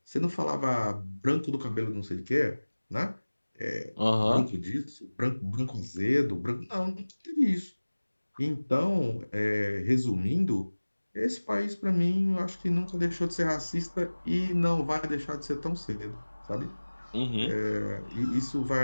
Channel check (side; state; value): both; inverted; correlation -1.00